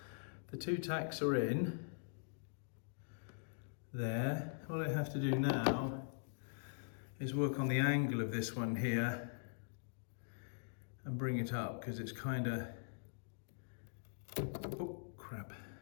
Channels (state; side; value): silent; right; digital silence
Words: The two tacks are in there. What I have to do now is work on the angle of this one here and bring it up, because it's kind of, oh crap.